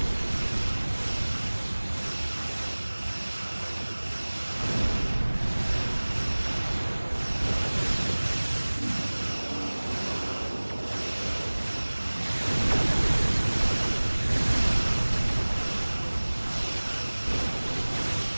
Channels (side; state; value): both; inverted; correlation -1.00